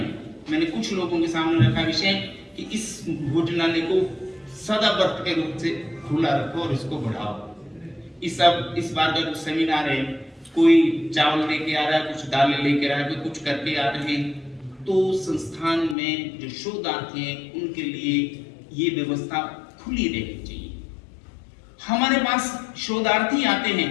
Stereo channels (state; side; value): drops out; right; at 16.0 s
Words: मैंने कुछ लोगों के सामने रखा विषय कि इस भोजनालय को सदाबर्त के रूप से खुला रखो और इसको बढ़ाओ। इस बार का कुछ सेमिनार है, कोई चावल लेके आ रहा है, कुछ दालें लेके आ रहा है, कोई कुछ करके आ रहे हैं, तो संस्थान में जो शोधार्थी हैं उनके लिए ये व्यवस्था खुली रहनी चाहिए। हमारे पास शोधार्थी आते हैं,